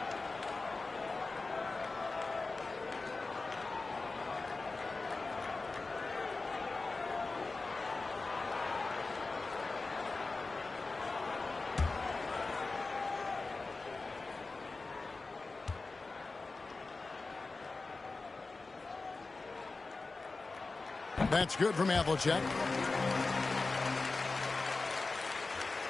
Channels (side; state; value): right; quieter; 3.7 dB